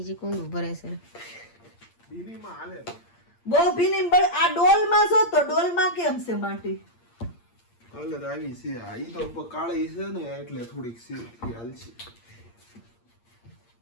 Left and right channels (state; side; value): late; right; 8.7 ms